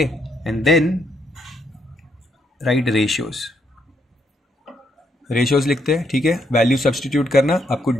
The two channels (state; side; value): normal; both; correlation 0.75